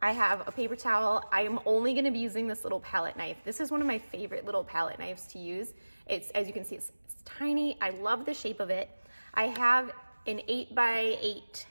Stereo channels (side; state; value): both; inverted; correlation -1.00